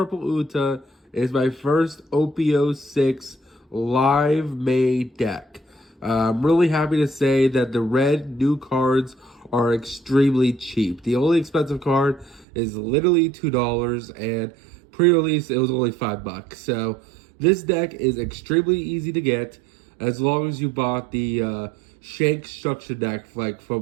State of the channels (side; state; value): left; drops out; at 12.5 s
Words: Uta is my first OPO6 live made deck. I'm really happy to say that the red new cards are extremely cheap. The only expensive card is literally $2, and pre-release it was only $5. So this deck is extremely easy to get as long as you bought the Shank structure deck